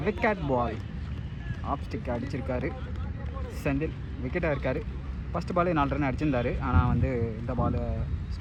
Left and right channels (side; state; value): both; identical; correlation 1.00